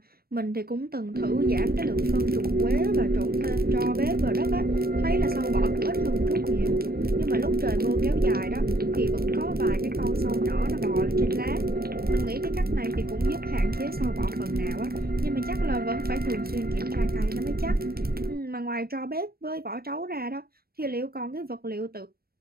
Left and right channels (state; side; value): late; left; 0.44 ms